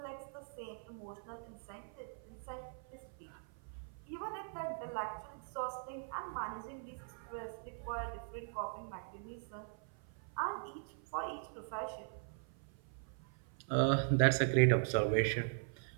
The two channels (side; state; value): left; silent; 51 dB below the other